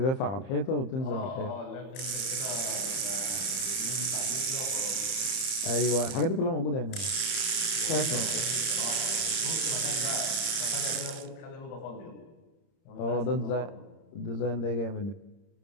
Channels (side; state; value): right; late; 30 ms